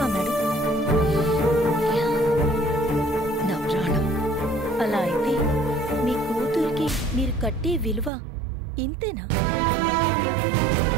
మేడం? నా ప్రాణం. అలా అయితే మీ కూతురికి మీరు కట్టే విలువ ఇంతేనా?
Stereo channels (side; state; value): left; drops out; at 8.1 s